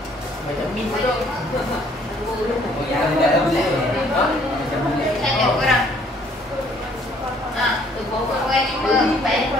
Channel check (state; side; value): normal; both; correlation 0.61